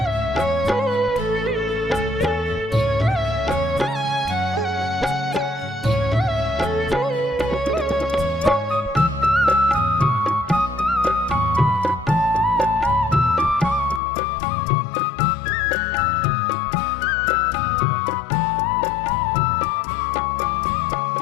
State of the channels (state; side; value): drops out; right; at 14.0 s